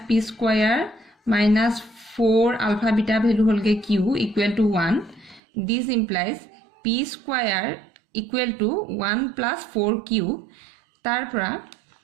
p square minus 4 alpha beta value হ'লগে q equal to 1 this implies p square equal to 1 plus 4q তাৰপৰা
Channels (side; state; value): left; drops out; at 5.4 s